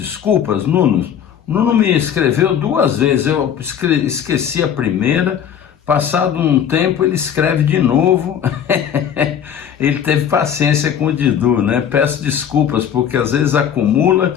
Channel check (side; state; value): right; quieter; 8.8 dB